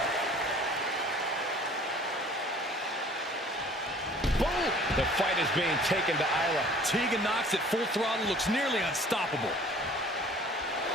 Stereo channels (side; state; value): both; normal; correlation 0.50